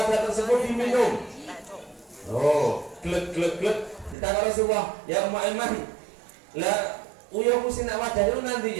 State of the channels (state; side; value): drops out; left; at 4.2 s